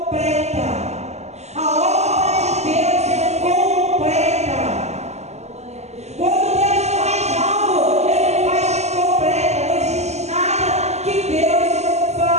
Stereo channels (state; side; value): late; left; 0.32 ms